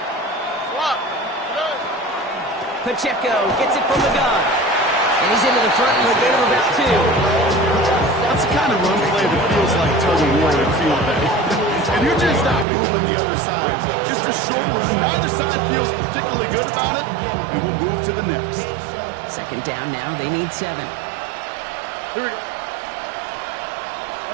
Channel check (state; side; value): drops out; left; at 12.7 s